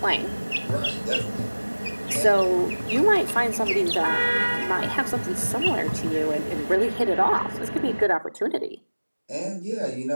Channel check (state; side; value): inverted; both; correlation -1.00